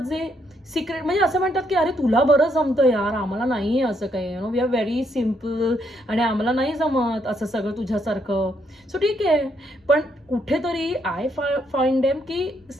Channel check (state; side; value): normal; both; correlation 0.74